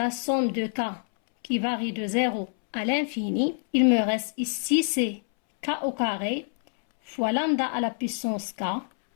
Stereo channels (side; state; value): right; silent; 61 dB below the other